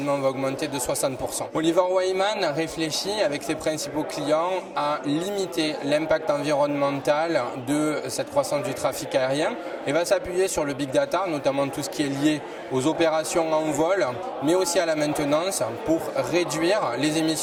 va augmenter de 60%. Oliver Wyman réfléchit avec ses principaux clients à limiter l'impact environnemental de cette croissance du trafic aérien et va s'appuyer sur le big data, notamment tout ce qui est lié aux opérations en vol, mais aussi à la maintenance pour réduire les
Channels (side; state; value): both; identical; correlation 1.00